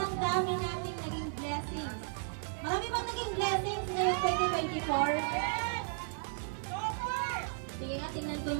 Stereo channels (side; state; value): left; silent; 55 dB below the other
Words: dami nating naging blessings. Marami bang naging blessings ngayong 2024? Sige nga, tingnan ko